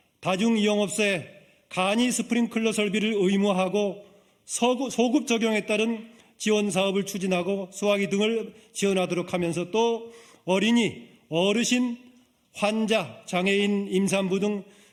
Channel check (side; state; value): both; identical; correlation 1.00